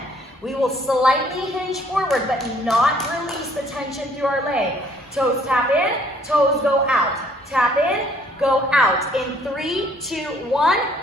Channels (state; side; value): normal; both; correlation 0.62